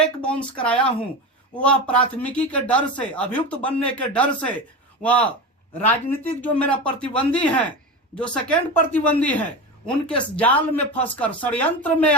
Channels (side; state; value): both; normal; correlation 0.24